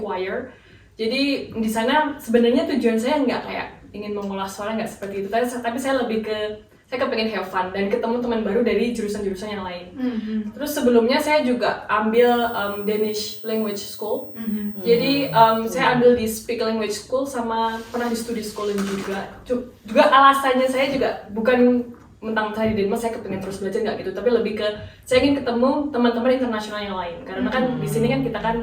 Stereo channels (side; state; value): both; identical; correlation 1.00